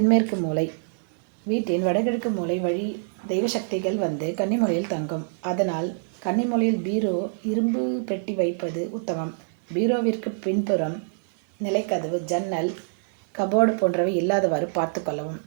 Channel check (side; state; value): left; silent; digital silence